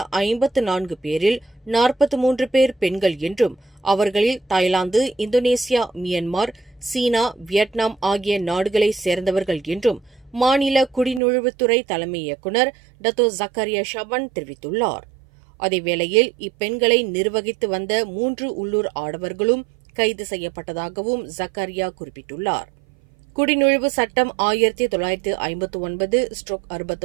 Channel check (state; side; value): drops out; left; at 11.2 s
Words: 54 பேரில் 43 பேர் பெண்கள் என்றும் அவர்களில் தாய்லாந்து, இந்தோனேசியா, மியான்மர், சீனா, வியட்நாம் ஆகிய நாடுகளைச் சேர்ந்தவர்கள் என்றும் மாநில குடிநுழைவுத்துறை தலைமை இயக்குநர் டத்தோ ஜக்கரியா ஷபான் தெரிவித்துள்ளார். அதேவேளையில் இப்பெண்களை நிர்வகித்து வந்த 3 உள்ளூர் ஆடவர்களும் கைது செய்யப்பட்டதாகவும் ஜக்கரியா குறிப்பிட்டுள்ளார். குடிநுழைவு சட்டம்